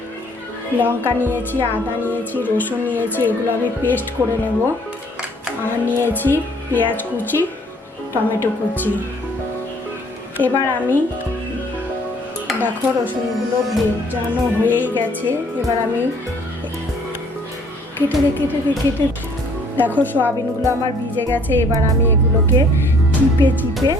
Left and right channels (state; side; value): normal; both; correlation 0.60